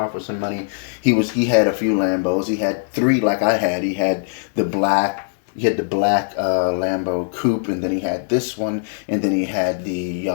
for some money. He had a few Lambos. He had three like I had. He had the black Lambo coupe, and then he had this one, and then he had the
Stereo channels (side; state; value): right; silent; digital silence